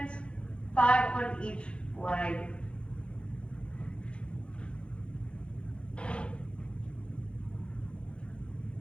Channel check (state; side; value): late; right; 0.059 ms